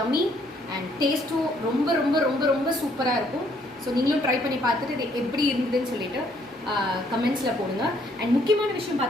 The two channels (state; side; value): normal; both; correlation 0.66